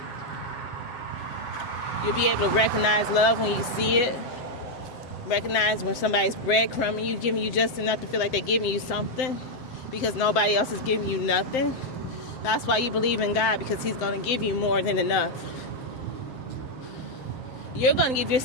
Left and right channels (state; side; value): late; right; 7.8 ms